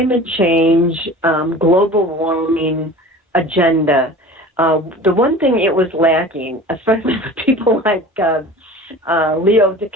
change, global warming agenda, the one thing it was lacking, especially for people like Leo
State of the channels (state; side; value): normal; both; correlation 0.40